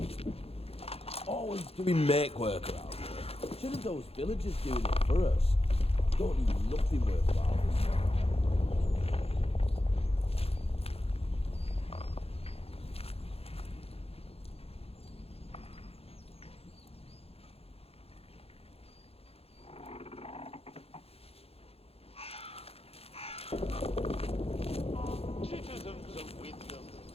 Always doing make work around here. Shouldn't those villagers doing it for us? Don't need nothing worthwhile this time. Citizens of Wyndham,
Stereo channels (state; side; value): late; right; 0.29 ms